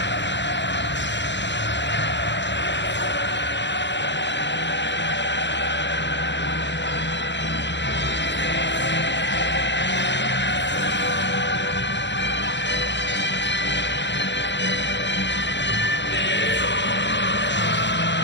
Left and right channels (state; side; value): late; right; 0.52 ms